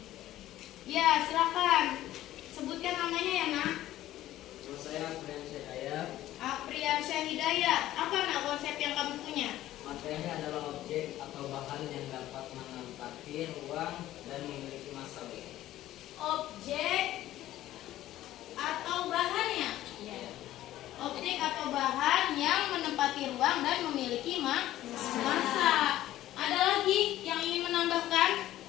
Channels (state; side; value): quieter; right; 14.2 dB